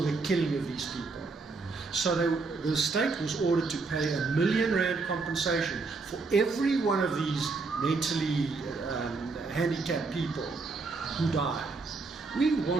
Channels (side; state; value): left; quieter; 4.1 dB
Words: killing of these people. So the state was ordered to pay R1 million compensation for every one of these mentally handicapped people who died. We